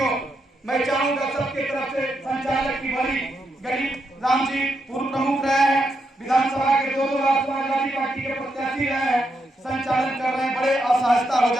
मैं चाहूंगा सबके तरफ से संचालक की बड़ी गरीब राम जी पूर्व प्रमुख रहे हैं, विधानसभा के 2 बार समाजवादी पार्टी के प्रत्याशी रहे हैं, संचालन कर रहे हैं, बड़े असहजता हो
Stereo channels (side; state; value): both; normal; correlation 0.82